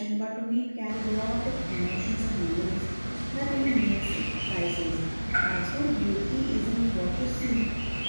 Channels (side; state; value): both; inverted; correlation -1.00